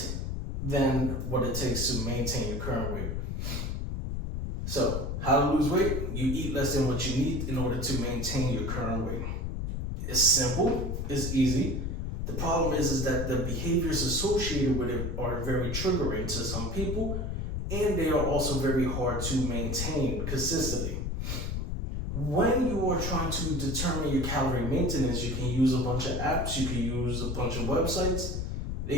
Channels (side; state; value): left; noise; rumble, 2 dB below the sound